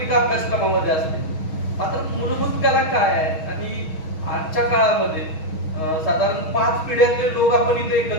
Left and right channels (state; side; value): late; right; 6.3 ms